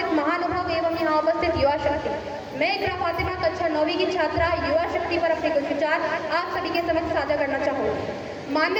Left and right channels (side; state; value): both; identical; correlation 1.00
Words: महानुभाव एवं यहाँ उपस्थित युवा शक्ति। मैं इकरा फातिमा कक्षा 9वीं की छात्रा युवा शक्ति पर अपने कुछ विचार आप सभी के समक्ष साझा करना चाहूँगी।